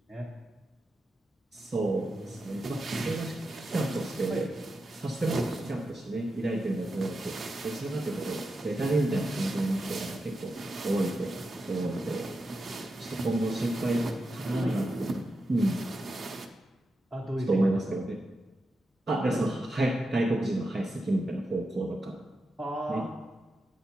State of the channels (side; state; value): both; normal; correlation 0.88